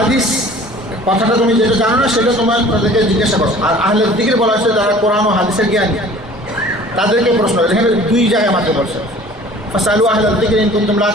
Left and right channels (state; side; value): normal; both; correlation 0.48